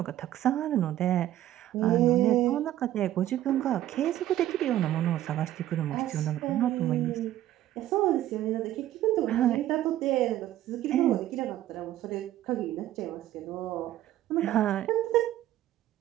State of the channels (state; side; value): quieter; left; 13.2 dB